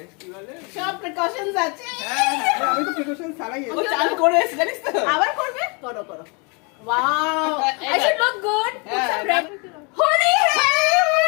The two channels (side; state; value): right; quieter; 32.3 dB